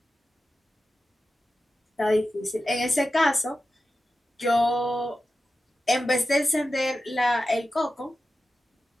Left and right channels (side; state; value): both; normal; correlation 0.92